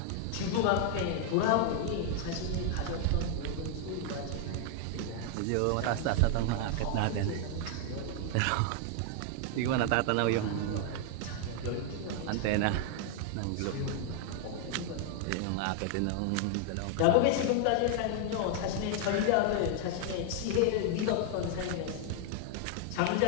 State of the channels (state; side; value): different; both; correlation 0.00